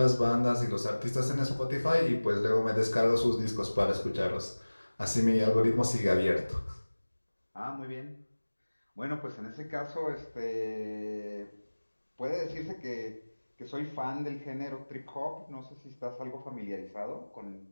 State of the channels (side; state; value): both; inverted; correlation -1.00